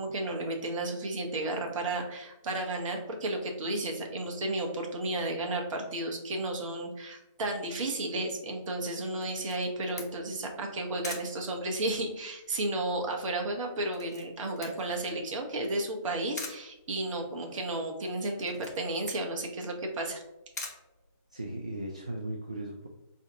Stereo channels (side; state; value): both; inverted; correlation -0.38